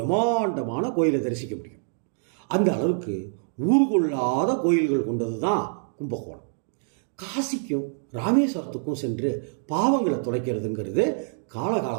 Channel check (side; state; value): left; silent; digital silence